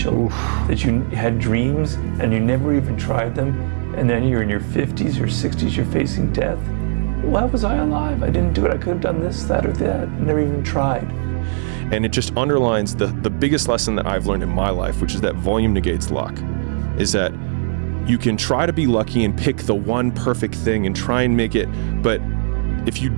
that you had dreams and you never even tried them, and then you're in your 50s or 60s, you're facing death. Why was I alive? I didn't do it. I could have done this, that, or that. I never even tried. And it just underlines the biggest lesson that I've learned in my life, which is that volume negates luck, is that you can try to be lucky and pick the one perfect thing and try and make it, but if you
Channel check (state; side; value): silent; left; digital silence